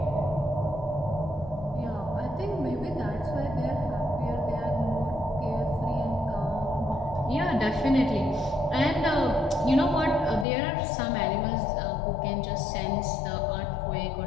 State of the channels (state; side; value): drops out; right; at 10.5 s